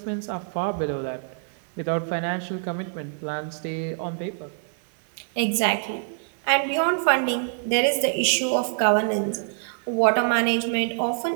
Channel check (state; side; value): silent; left; 61 dB below the other